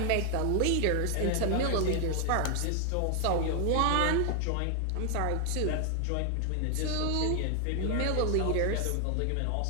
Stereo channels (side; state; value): both; different; correlation 0.00